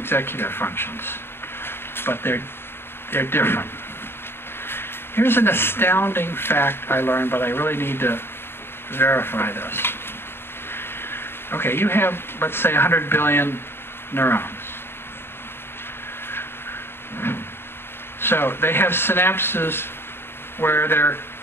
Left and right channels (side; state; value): right; late; 0.11 ms